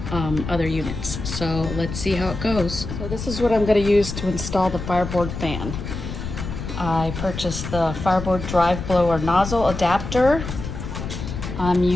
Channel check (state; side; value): noise; left; rumble, 7 dB below the sound